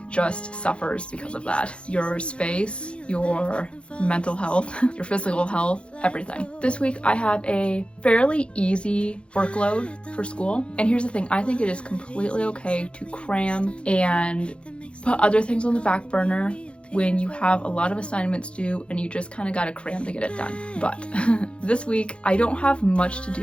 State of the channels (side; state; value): right; late; 0.058 ms